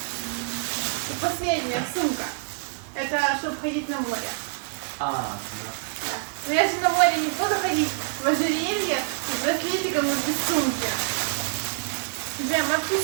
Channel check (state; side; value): silent; left; 61 dB below the other